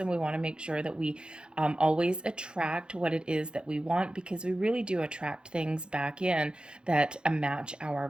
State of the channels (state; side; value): late; left; 0.051 ms